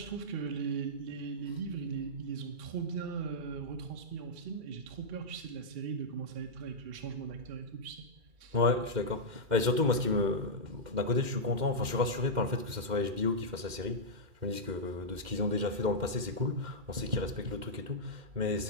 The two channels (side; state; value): left; late; 2.1 ms